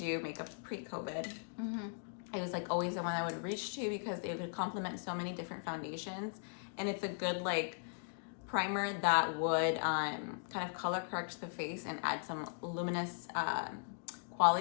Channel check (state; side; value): silent; right; digital silence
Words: makeup pre-COVID, it was like always the one I would reach to because it would complement so many different foundations, and it's a good like primer that would kind of color correct the face and add some luminous